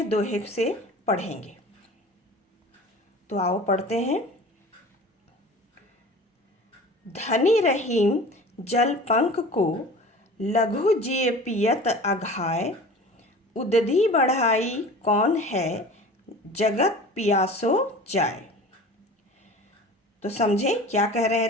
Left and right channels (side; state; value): both; normal; correlation 0.40